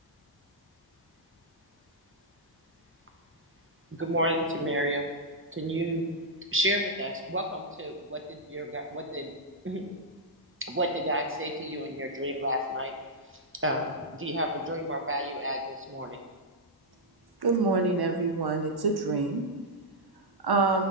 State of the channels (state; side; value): normal; both; correlation -0.08